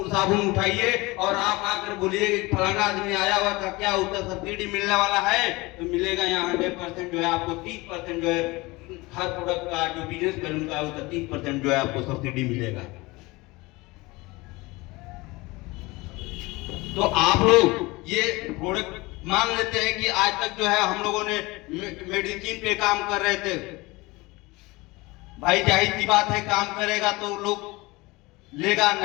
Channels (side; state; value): right; quieter; 22.7 dB